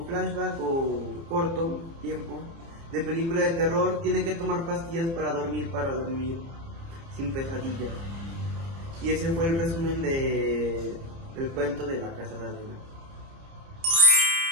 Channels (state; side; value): late; left; 30 ms